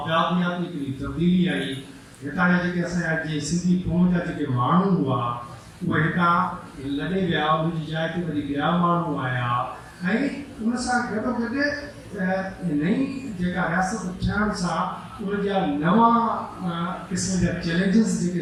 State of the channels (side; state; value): both; identical; correlation 1.00